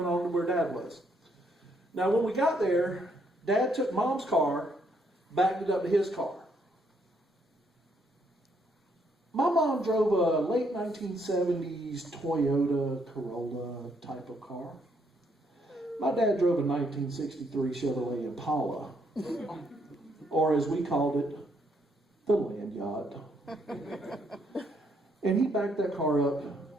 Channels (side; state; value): both; normal; correlation 0.72